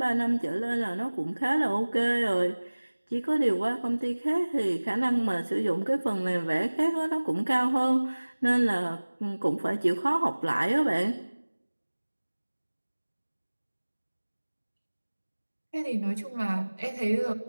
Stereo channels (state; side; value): inverted; both; correlation -1.00